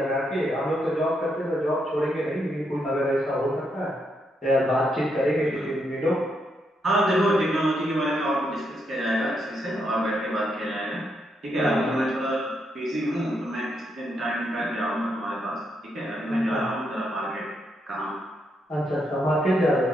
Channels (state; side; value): normal; both; correlation 0.79